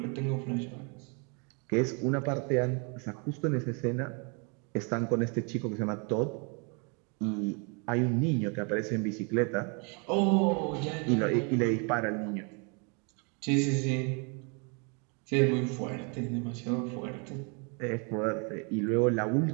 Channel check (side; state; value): left; quieter; 34.8 dB